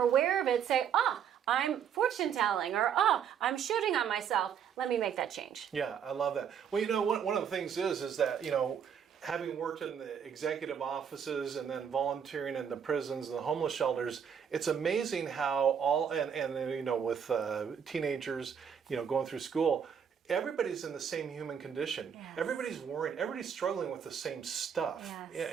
aware of it, say, I'm fortune telling, or I'm shooting on myself. Let me make that change. Yeah, I love that. Well, one of the things is that, having worked in the executive offices and then volunteering in the prisons and the homeless shelters, it's amazing how with teenagers, going through school, everybody's in the same human condition. Yes. Everybody's worrying. Everybody's struggling with the same stuff.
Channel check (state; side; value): quieter; left; 7.8 dB